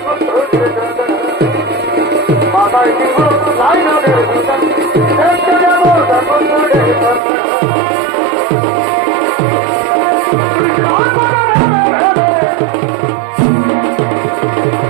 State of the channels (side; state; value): left; drops out; at 7.2 s